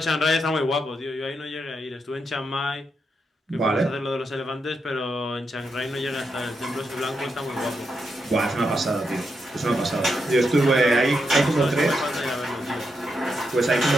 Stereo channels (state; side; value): normal; both; correlation 0.83